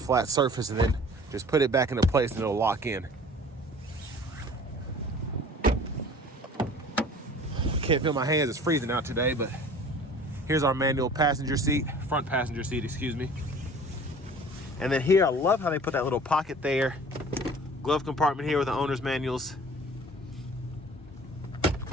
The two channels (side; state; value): both; normal; correlation 0.46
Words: flat surface, and then just put it back into place and it'll lock in. Can't feel my hands, it's freezing out today, but here's our manual passenger seat, front passenger seat, excuse me. And then here, I love how they put that little pocket there. Glove compartment here with the owner's manuals.